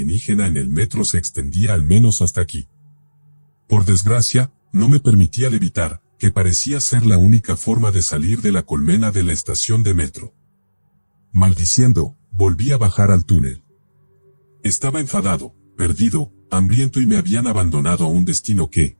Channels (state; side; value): inverted; both; correlation -1.00